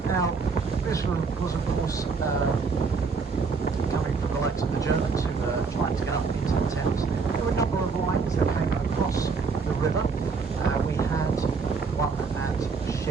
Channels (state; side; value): quieter; left; 4.9 dB